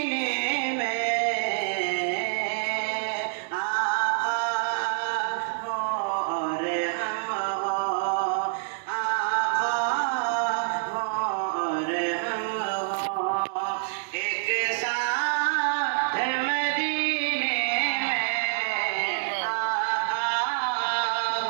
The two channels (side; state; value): left; silent; digital silence